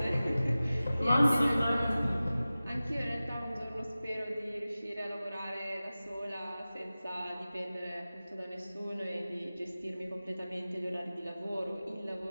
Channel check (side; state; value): both; inverted; correlation -0.96